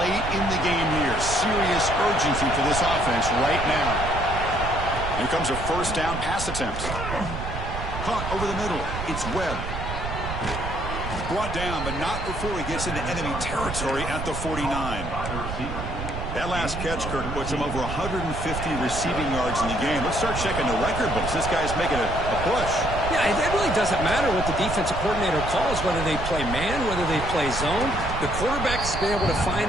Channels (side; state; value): right; noise; rumble, 6 dB below the sound